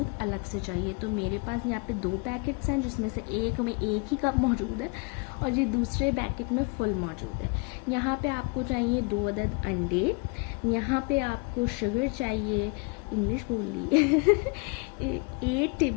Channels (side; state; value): right; quieter; 31.6 dB